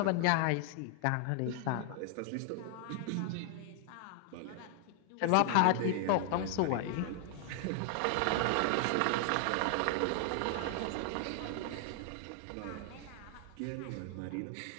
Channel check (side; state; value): both; different; correlation 0.00